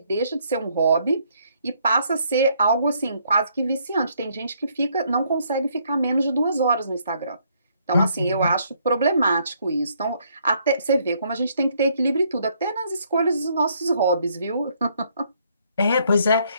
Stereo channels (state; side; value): inverted; both; correlation -0.69